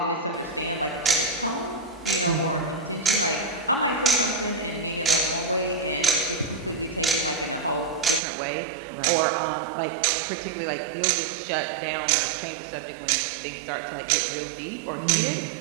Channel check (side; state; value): left; drops out; at 8.2 s